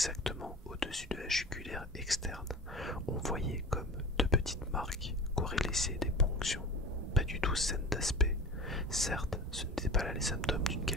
au-dessus de la jugulaire externe, on voyait comme deux petites marques qu'auraient laissées des ponctions, pas du tout saines d'aspect. Certes, ce n'étaient pas là les symptômes d'une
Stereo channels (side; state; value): both; normal; correlation 0.35